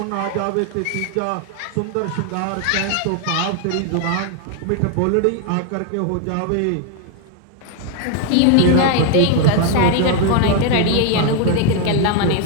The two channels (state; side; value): different; both; correlation 0.01